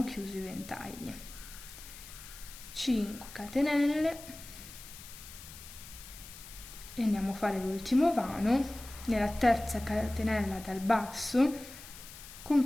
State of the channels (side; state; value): left; noise; hiss, 15 dB below the sound